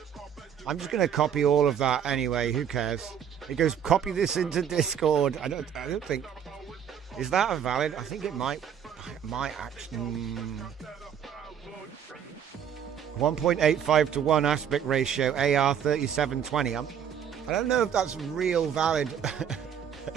I'm just going to copy all of that anyway. Who cares? It goes, copy this into Discord. I don't think... Is that a valid? I think it might actually... 1.85 to 1 aspect ratio, AR 3720. I don't know if that's real valid,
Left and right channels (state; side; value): quieter; left; 8.5 dB